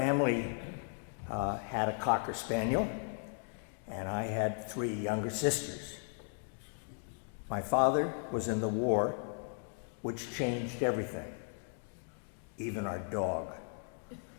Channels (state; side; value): silent; right; 54 dB below the other